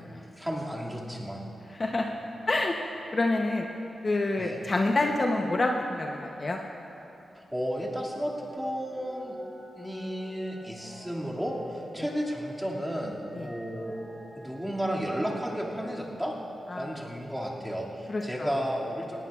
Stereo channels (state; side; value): normal; both; correlation 0.94